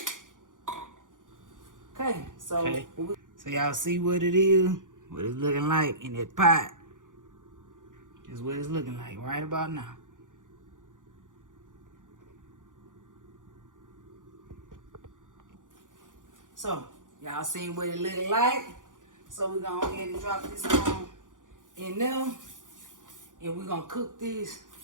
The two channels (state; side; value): late; left; 0.88 ms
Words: Okay, so y'all see what it is, what it's looking like in that pot. This is what it's looking like right about now. So y'all seen what it looking like. So we're gonna go ahead and drop this on in there, and we're gonna cook this